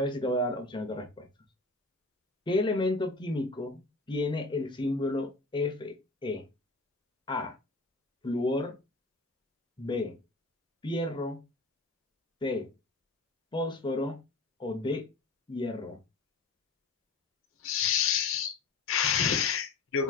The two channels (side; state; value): right; quieter; 3.5 dB